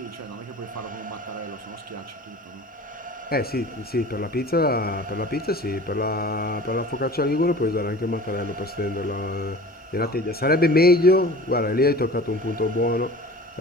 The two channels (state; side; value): normal; both; correlation 0.41